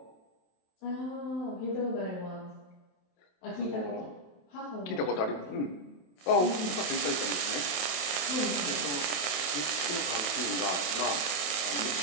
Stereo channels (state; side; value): late; right; 27 ms